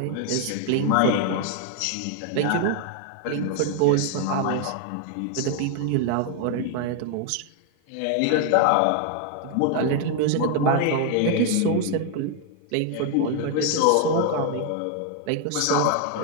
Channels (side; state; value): both; different; correlation 0.00